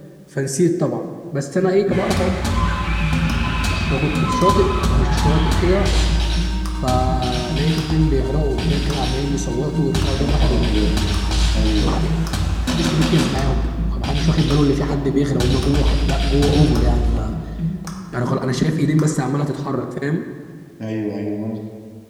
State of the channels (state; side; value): identical; both; correlation 1.00